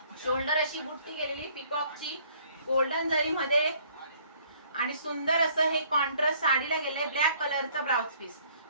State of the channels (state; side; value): inverted; both; correlation -0.60